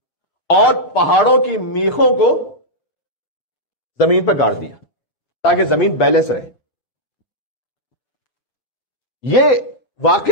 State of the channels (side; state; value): right; late; 6.8 ms